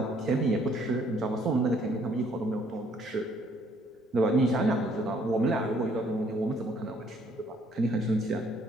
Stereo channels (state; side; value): normal; both; correlation 0.64